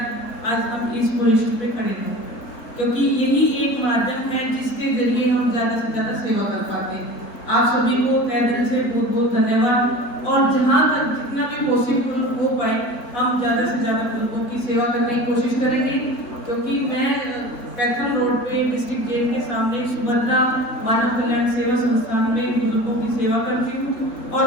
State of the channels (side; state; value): right; late; 4.0 ms